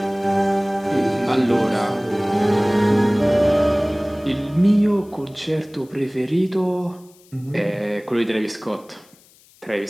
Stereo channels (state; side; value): noise; left; hiss, 29 dB below the sound